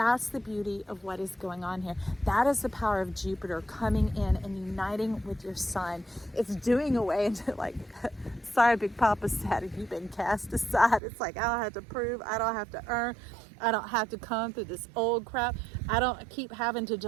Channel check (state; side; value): drops out; left; at 11.0 s